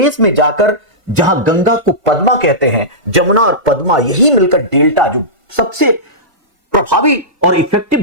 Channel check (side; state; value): left; late; 1.5 ms